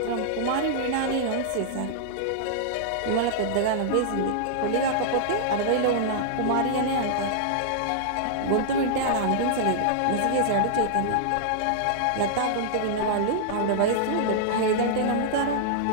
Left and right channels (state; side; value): different; both; correlation -0.02